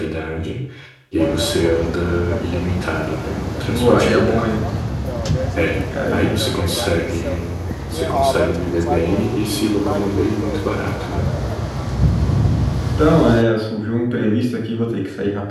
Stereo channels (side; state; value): both; identical; correlation 1.00